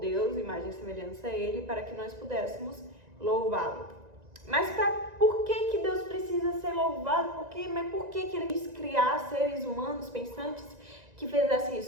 imagem e semelhança a Ele, para que nós pudéssemos louvá-lo. Mas por que Deus precisa ser louvado? Mas por que Ele quis criar seres humanos pensantes que fizessem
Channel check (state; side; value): late; left; 1.9 ms